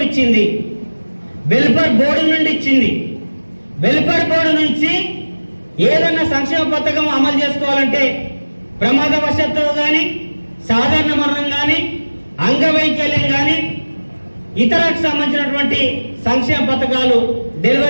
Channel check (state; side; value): inverted; both; correlation -1.00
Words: ఇచ్చింది, వెల్ఫేర్ బోర్డు నుండి ఇచ్చింది. వెల్ఫేర్ బోర్డు నుంచి ఏదన్నా సంక్షేమ పథకం అమలు చేసుకోవాలంటే ప్రమాదవశాత్తు కానీ, సాధారణ మరణం కానీ, అంగవైకల్యం కానీ, ఇతరకు సంబంధించినటువంటి సంక్షేమ పథకాలు,